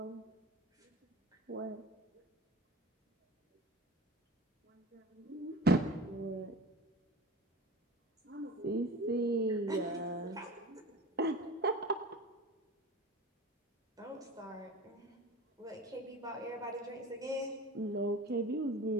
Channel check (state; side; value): normal; both; correlation 0.35